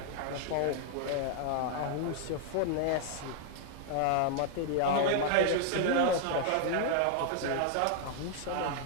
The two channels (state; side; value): different; both; correlation 0.00